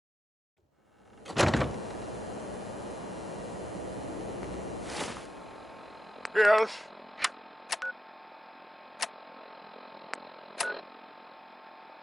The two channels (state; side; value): normal; both; correlation 0.88